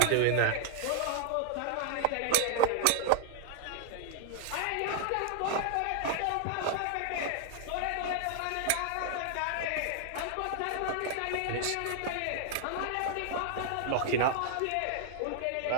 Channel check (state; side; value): different; both; correlation 0.00